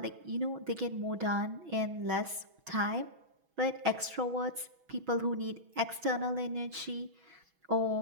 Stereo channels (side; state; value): left; late; 6.2 ms